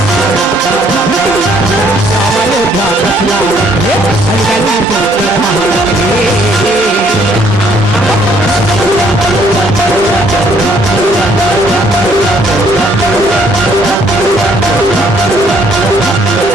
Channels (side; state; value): both; normal; correlation 0.65